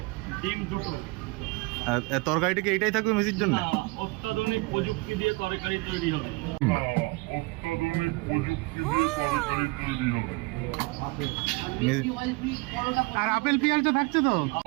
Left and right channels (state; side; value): quieter; left; 25.3 dB